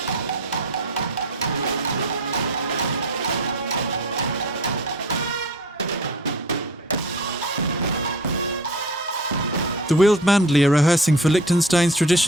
The Wildmandli are rehearsing for Liechtenstein's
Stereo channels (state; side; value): normal; both; correlation 0.40